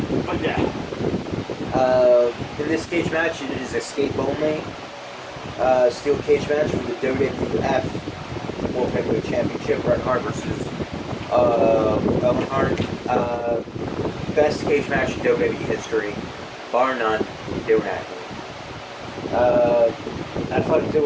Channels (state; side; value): identical; both; correlation 1.00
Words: but yeah. In this cage match, it is escape only. Steel cage match for the WWF World Heavyweight Championship. Bret Hart versus Owen Hart. Best cage match in WWE history, bar none. Don't act. I thought it did